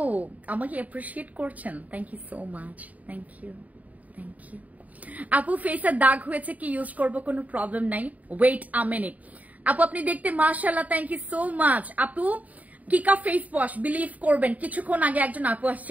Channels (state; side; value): late; left; 0.073 ms